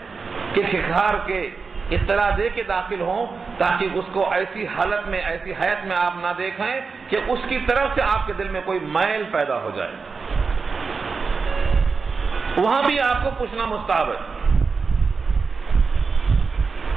کہ کھکھار کے اطلاع دے کے داخل ہوں تاکہ اس کو ایسی حالت میں، ایسی حیات میں آپ نہ دیکھیں کہ اس کی طرف سے آپ کے دل میں کوئی میل پیدا ہو جائے. وہاں بھی آپ کو پوچھنا مستحب ہے.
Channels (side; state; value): left; quieter; 4.8 dB